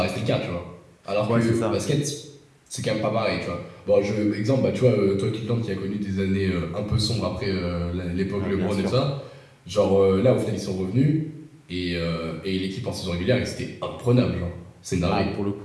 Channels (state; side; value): identical; both; correlation 1.00